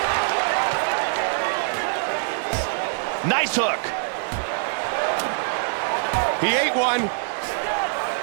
Nice hook. He ate one.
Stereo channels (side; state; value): left; silent; 63 dB below the other